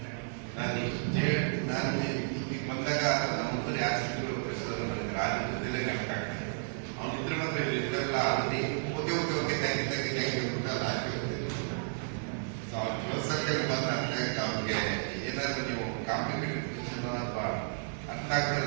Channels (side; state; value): left; silent; 56 dB below the other